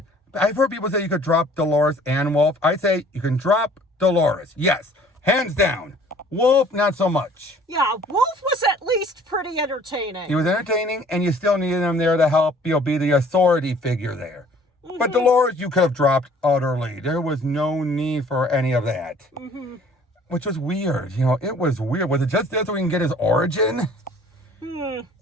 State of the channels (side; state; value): both; normal; correlation 0.54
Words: I've heard people say you could drop Dolores and Wolf. I say you can drop Dolores. Yes, hands down. Wolf, not so much. Yeah, Wolf was at least pretty entertaining. He was entertaining, and you still needed him there to help, be the authority figure there. But Dolores, you could have dropped utterly. There was no need for any of that. Which was weird. It was weird. Was it just there so we can get his origin?